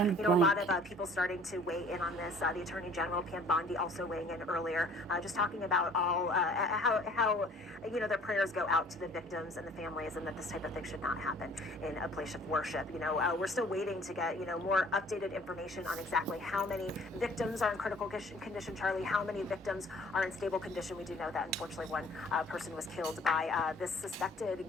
So, a lot of people starting to weigh in on this. The Attorney General, Pam Bondi, also weighing in earlier, just talking about all how their prayers go out to the victims and the families, and that this type of thing should not happen in a place of worship. We're still waiting to get more updated information on exactly how many victims are in critical condition, Charlie, how many victims are in stable condition. We do know that unfortunately one person was killed by this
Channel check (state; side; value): normal; both; correlation 0.53